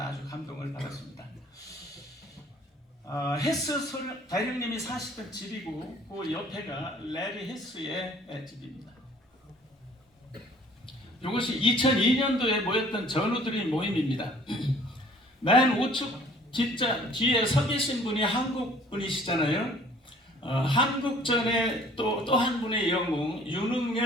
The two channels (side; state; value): both; normal; correlation 0.54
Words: 아주 감동을 받았습니다. 헤스 대령님이 사시던 집이고 그 옆에가 레리 헤스의 집입니다. 이것이 2002년도에 모였던 전우들의 모임입니다. 맨 우측 뒤에 서 계신 분이 한국 분이시잖아요. 한국전의 또 한 분의 영웅